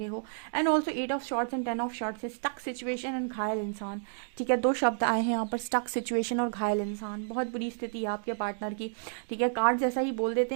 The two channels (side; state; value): left; silent; digital silence